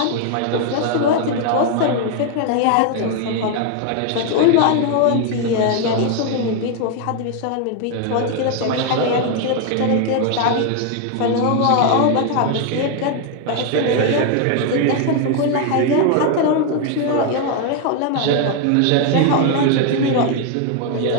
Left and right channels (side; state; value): both; different; correlation 0.01